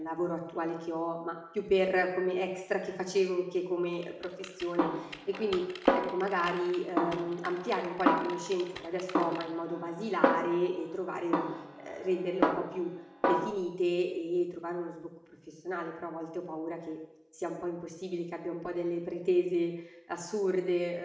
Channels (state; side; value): identical; both; correlation 1.00